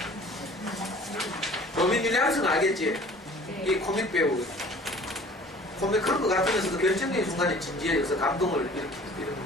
로빈 윌리엄스는 알겠지? 이 코믹 배우. 코믹 그런 거 같으면서도 결정적인 순간에 진지해져서 감동을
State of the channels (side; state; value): both; normal; correlation 0.48